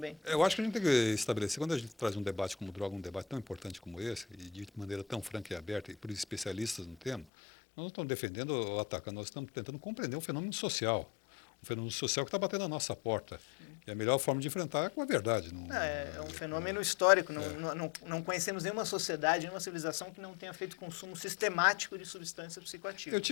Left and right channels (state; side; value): drops out; right; at 7.2 s